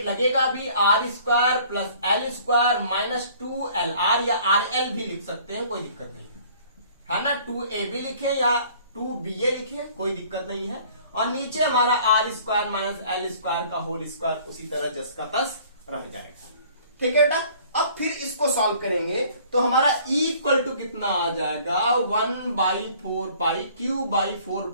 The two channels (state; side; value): inverted; both; correlation -0.54